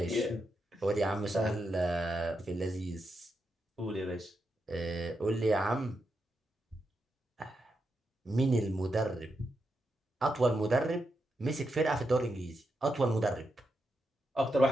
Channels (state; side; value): normal; both; correlation 0.85